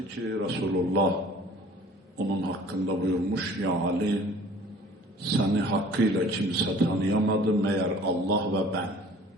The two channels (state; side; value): normal; both; correlation 0.49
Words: ki Resulullah onun hakkında buyurmuş, ya Ali seni hakkıyla kimse tanıyamadı meğer Allah ve ben.